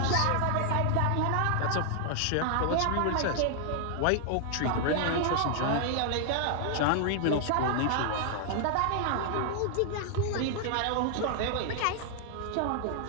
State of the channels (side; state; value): both; different; correlation 0.00